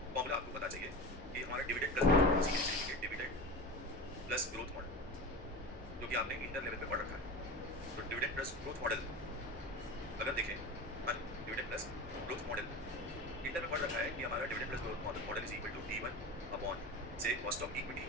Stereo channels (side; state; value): both; normal; correlation 0.28